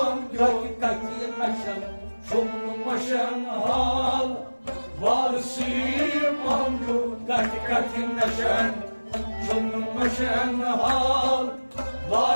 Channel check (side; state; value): both; inverted; correlation -1.00